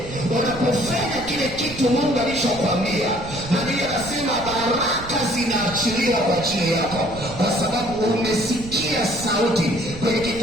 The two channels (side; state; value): right; noise; rumble, 13 dB below the sound